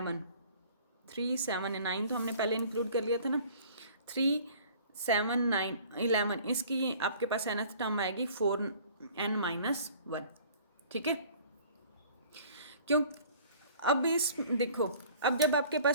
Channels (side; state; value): both; inverted; correlation -0.50